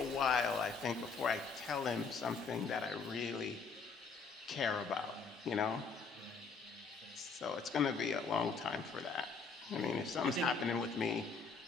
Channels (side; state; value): right; quieter; 5.0 dB